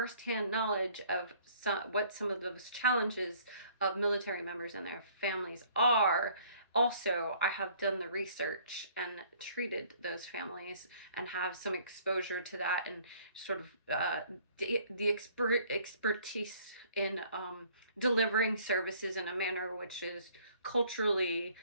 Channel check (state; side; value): inverted; both; correlation -0.58